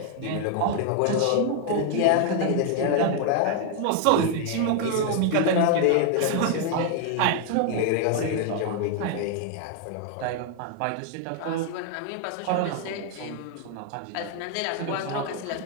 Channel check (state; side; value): different; both; correlation 0.00